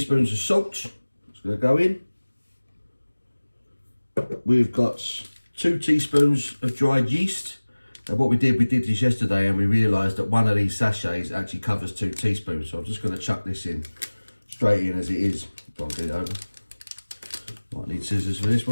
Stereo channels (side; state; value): both; inverted; correlation -1.00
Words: of salt. It's going to go in. We've got 2 teaspoons of dried yeast. And what we did this yesterday and we realised that one of these sachets actually covers 2 teaspoons. So I'm just going to chuck this in, straight in as it is. Try and get it over. Might need scissors for this